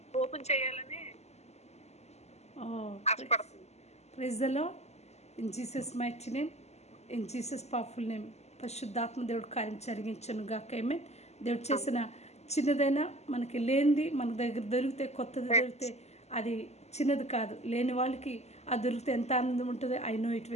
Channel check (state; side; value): late; right; 0.32 ms